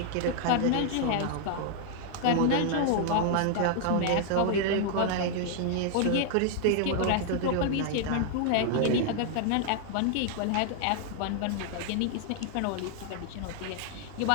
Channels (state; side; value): different; both; correlation 0.00